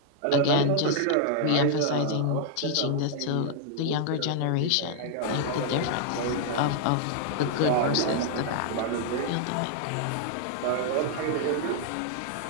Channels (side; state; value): both; different; correlation 0.00